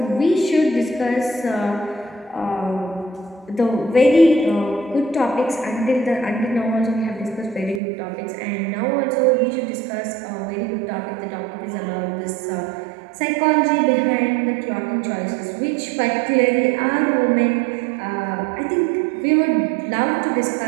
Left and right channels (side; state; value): left; drops out; at 7.8 s